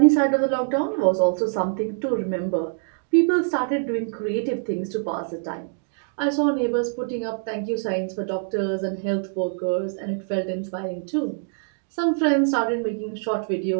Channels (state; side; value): silent; left; digital silence